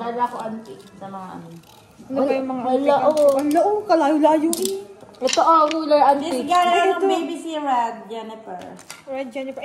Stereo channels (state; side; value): identical; both; correlation 1.00